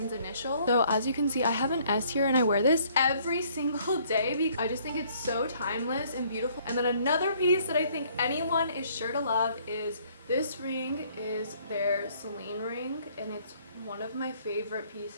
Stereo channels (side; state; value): both; inverted; correlation -0.62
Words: initial. So as you can see, I have an S here and I wear this every single day because I just think it's so timeless and beautiful. And then another piece that I think anyone is sure to love is this ring. Is their Celine ring, and it's one of my favorite